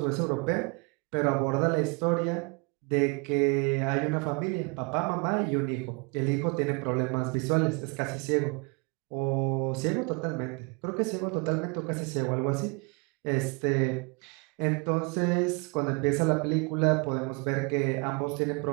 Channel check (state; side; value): quieter; left; 31.7 dB